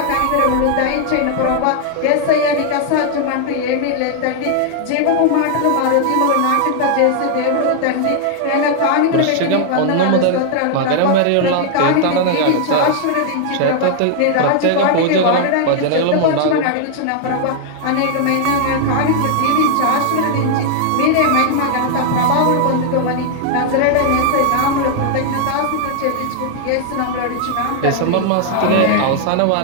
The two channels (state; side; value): different; both; correlation 0.00